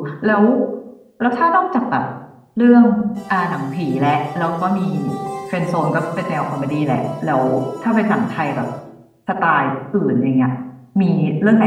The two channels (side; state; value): both; identical; correlation 1.00